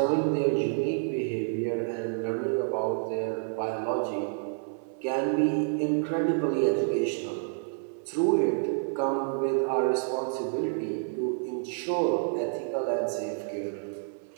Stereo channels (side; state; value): left; silent; 59 dB below the other